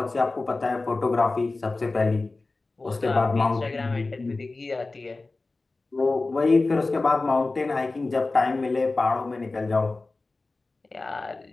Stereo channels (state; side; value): quieter; right; 3.4 dB